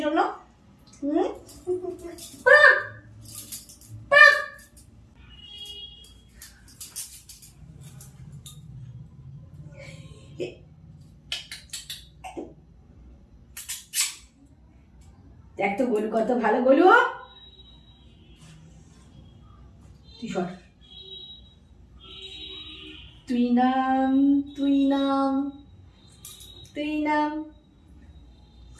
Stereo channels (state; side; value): identical; both; correlation 1.00